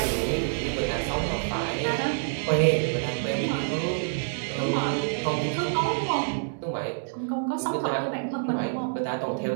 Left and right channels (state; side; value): silent; left; digital silence